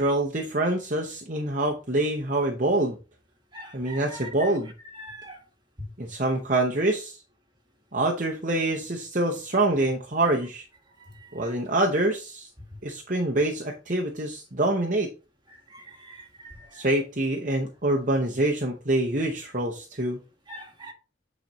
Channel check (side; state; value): both; normal; correlation 0.24